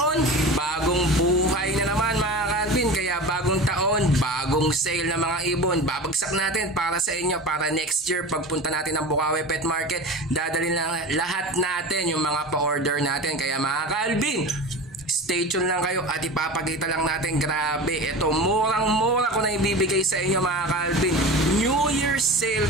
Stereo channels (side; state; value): both; normal; correlation 0.32